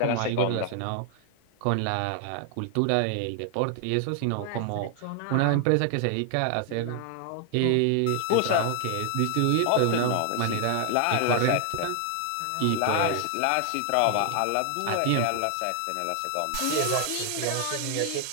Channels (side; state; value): both; different; correlation 0.00